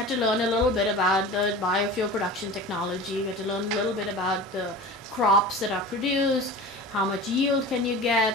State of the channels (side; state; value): both; normal; correlation 0.35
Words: to learn a little bit about the biofuel production technology. We had to learn a little bit about the crops that are produced, how much yield can you